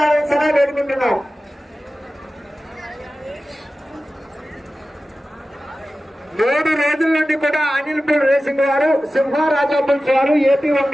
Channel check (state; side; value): normal; both; correlation 0.95